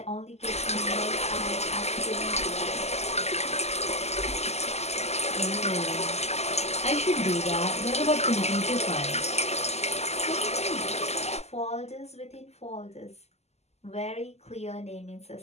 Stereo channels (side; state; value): right; late; 0.31 ms